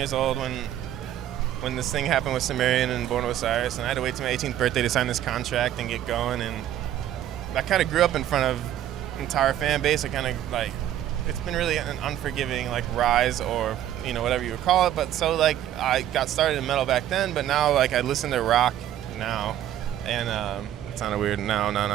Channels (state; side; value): quieter; left; 11.8 dB